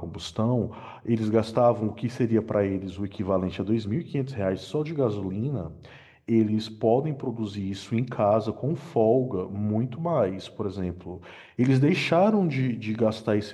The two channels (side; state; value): both; identical; correlation 1.00